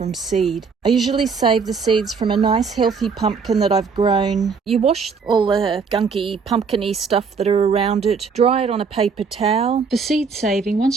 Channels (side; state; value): left; quieter; 5.4 dB